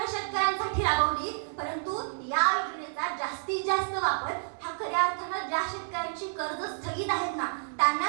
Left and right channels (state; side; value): silent; left; 55 dB below the other